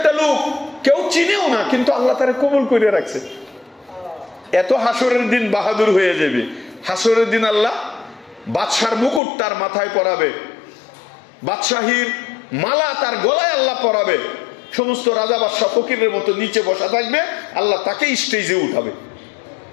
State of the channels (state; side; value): drops out; right; at 9.2 s